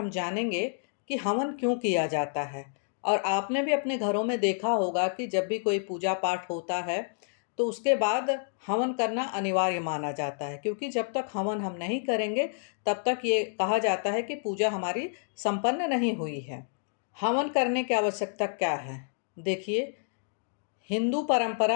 जानेंगे कि हवन क्यों किया जाता है। और आपने भी अपने घरों में देखा होगा कि जब भी कोई पूजा पाठ होता है तो उसके बाद हवन करना अनिवार्य माना जाता है, क्योंकि जब तक हवन हम नहीं करेंगे तब तक ये कहा जाता है कि पूजा हमारी संपन्न नहीं हुई है। हवन करने की आवश्यकता क्या है? देखिए, हिंदू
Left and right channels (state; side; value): silent; right; digital silence